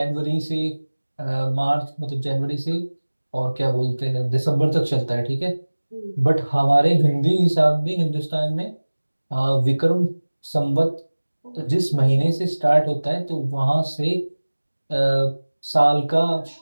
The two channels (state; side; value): inverted; both; correlation -1.00